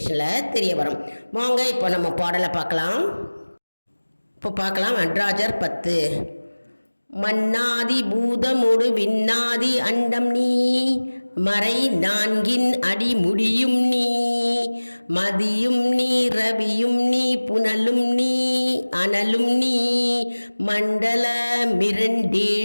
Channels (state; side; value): inverted; both; correlation -1.00